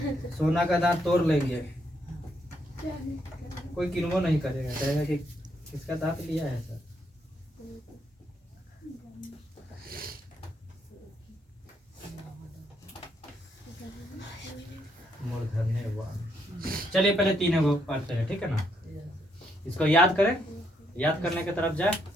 सोना का दांत तोड़ लेंगे, कोई किन्वो नहीं करेगा, कहेगा कि किसका दांत लिया है सर। चलिए पहले तीनों को पढ़ते हैं, ठीक है ना? इसको याद करें, याद करने की तरफ जाए,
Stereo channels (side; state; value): both; normal; correlation 0.75